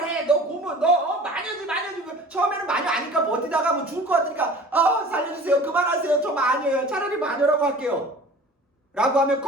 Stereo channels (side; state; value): both; normal; correlation 0.43